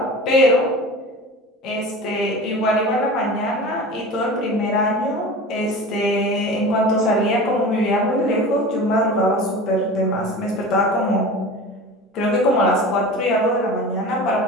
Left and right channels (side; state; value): both; normal; correlation 0.35